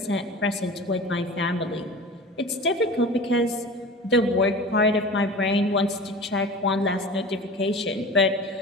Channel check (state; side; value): normal; both; correlation 0.36